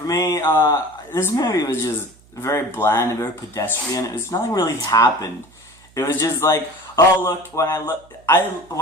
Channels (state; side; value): noise; right; hum, 28 dB below the sound